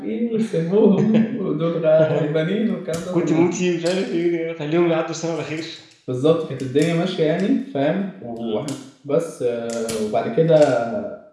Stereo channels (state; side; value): identical; both; correlation 1.00